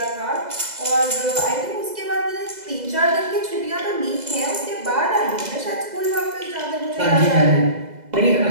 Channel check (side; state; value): left; late; 2.0 ms